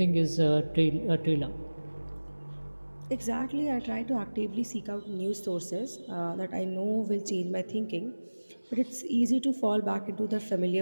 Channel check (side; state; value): both; inverted; correlation -1.00